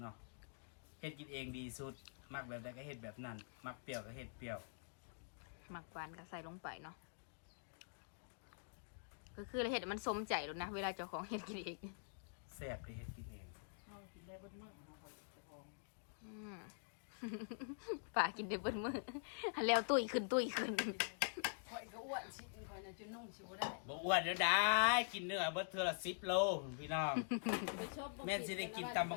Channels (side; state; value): right; silent; digital silence